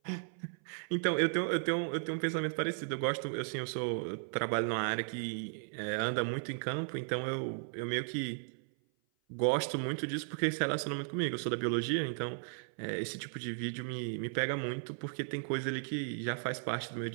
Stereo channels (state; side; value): silent; left; 54 dB below the other